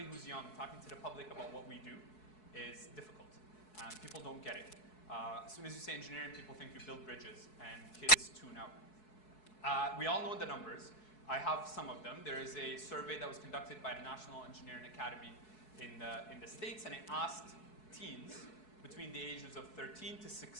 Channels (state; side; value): late; right; 4.7 ms